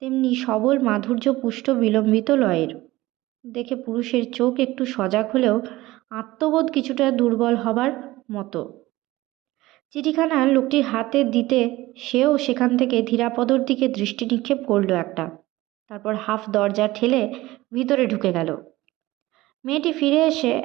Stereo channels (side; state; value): left; quieter; 18.2 dB